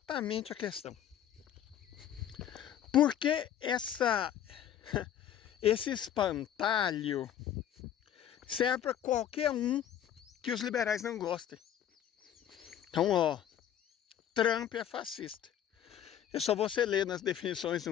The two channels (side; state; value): right; quieter; 10.3 dB